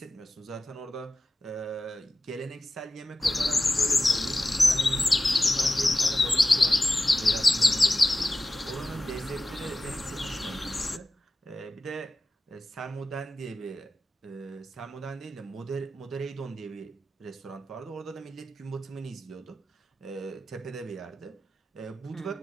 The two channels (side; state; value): both; normal; correlation 0.94